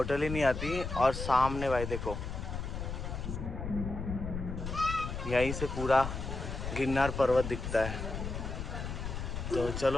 ही नहीं आती। और सामने भाई देखो यहीं से पूरा गिरनार पर्वत दिखता है। तो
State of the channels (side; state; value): left; noise; rumble, 5 dB below the sound